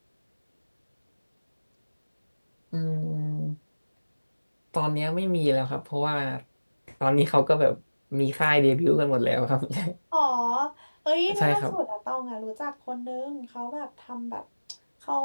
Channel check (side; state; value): both; inverted; correlation -1.00